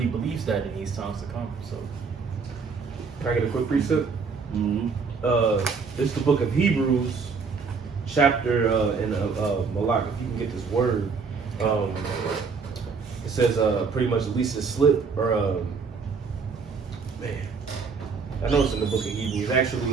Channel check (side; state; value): left; quieter; 5.1 dB